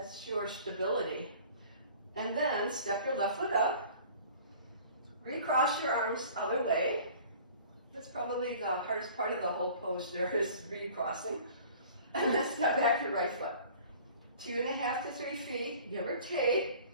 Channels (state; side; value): inverted; both; correlation -0.47